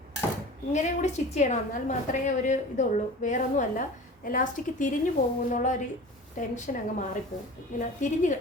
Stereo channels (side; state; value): both; normal; correlation 0.38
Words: ഇങ്ങനെയും കൂടി സ്റ്റിച്ച് ചെയ്യണം, എന്നാൽ മാത്രമേ ഒരു ഇതുള്ളൂ, വേറൊന്നുമല്ല. എലാസ്റ്റിക് തിരിഞ്ഞു പോകുമെന്നുള്ള ഒരു ടെൻഷൻ അങ്ങ് മാറിപ്പോകും. ഇങ്ങനെ